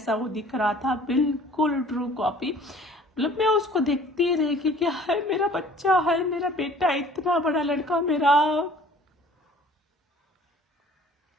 वो दिख रहा था, बिल्कुल ट्रू कॉपी। मतलब मैं उसको देखती रही कि क्या है, मेरा बच्चा है, मेरा बेटा, इतना बड़ा लड़का मेरा।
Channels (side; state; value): both; normal; correlation 0.51